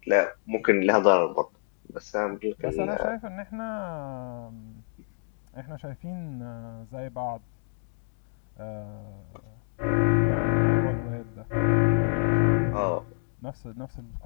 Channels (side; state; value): right; silent; 59 dB below the other